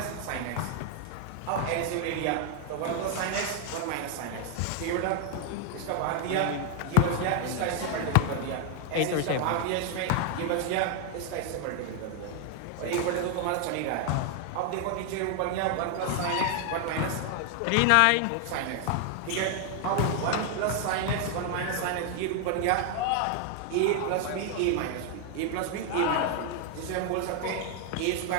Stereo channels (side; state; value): both; different; correlation 0.00